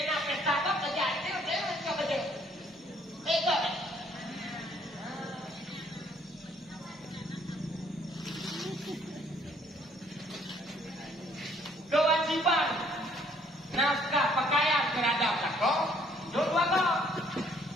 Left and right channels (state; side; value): normal; both; correlation 0.63